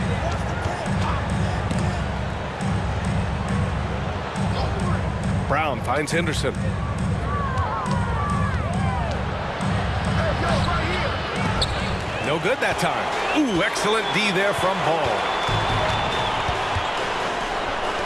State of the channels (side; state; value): both; identical; correlation 1.00